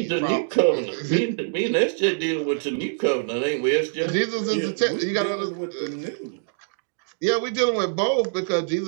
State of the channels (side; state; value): left; silent; digital silence